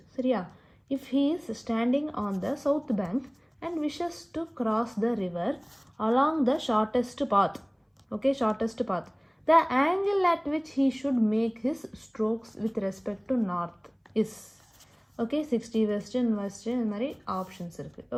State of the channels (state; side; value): identical; both; correlation 1.00